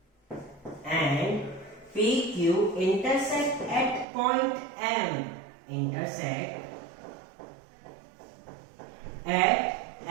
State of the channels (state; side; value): drops out; left; at 4.0 s